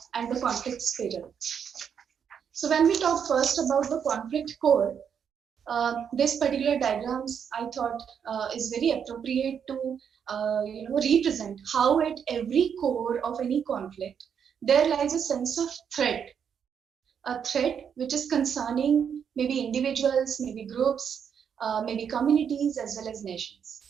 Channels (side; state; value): left; quieter; 7.6 dB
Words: and the conflict spiral. So when we talk first about the conflict core, this particular diagrams I thought is very appropriate to represent how at every core of any conflict there lies a sense of threat, a threat which is concerning maybe individuals, maybe groups, maybe communities, as well as nations.